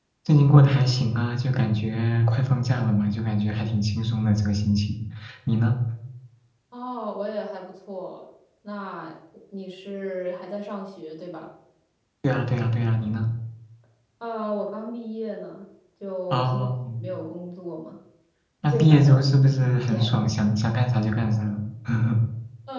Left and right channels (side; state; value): both; identical; correlation 1.00